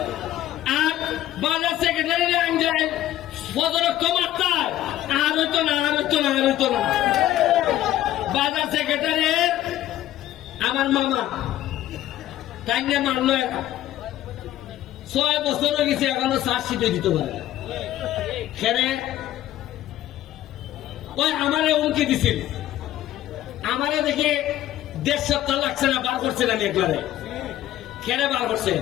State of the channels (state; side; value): quieter; right; 13.5 dB